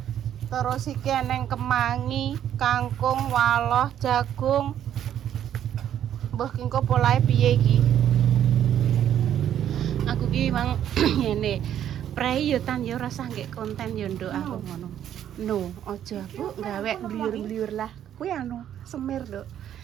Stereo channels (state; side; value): quieter; left; 10.4 dB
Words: Terus iki eneng kemangi, kangkung, waloh, jagung. Mbah kingko polahe piye iki? Aku ki mang ngene. Prei yo tan yo rasa nggih konten yo nduk aku ngono. No, aja Bu, gawe bliur-bliur lah. Kuwi anu, semir, Nduk.